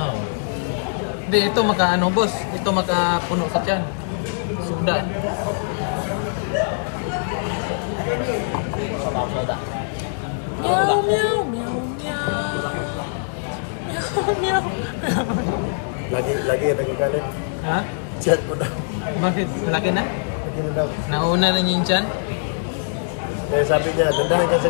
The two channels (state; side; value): silent; right; digital silence